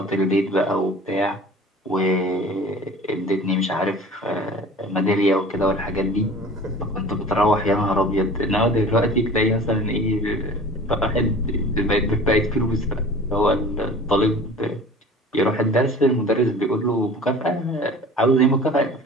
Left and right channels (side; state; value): both; normal; correlation 0.42